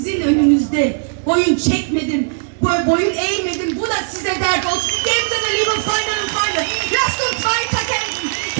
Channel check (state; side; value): silent; left; digital silence